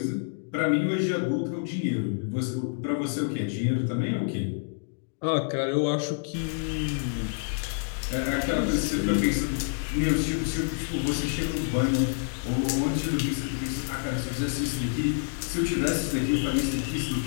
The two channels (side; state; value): right; silent; digital silence